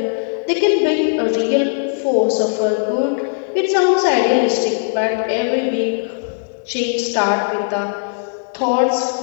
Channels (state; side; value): silent; right; digital silence